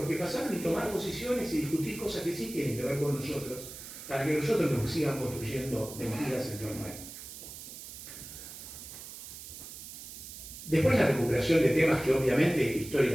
pasaron y tomar posiciones y discutir cosas que sí tienen que ver con nosotros, para que nosotros nos sigan construyendo mentiras en torno a él. Después la recuperación de temas que obviamente,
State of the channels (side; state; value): right; noise; hiss, 12 dB below the sound